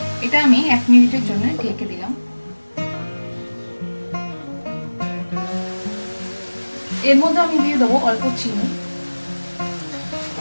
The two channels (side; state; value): both; inverted; correlation -1.00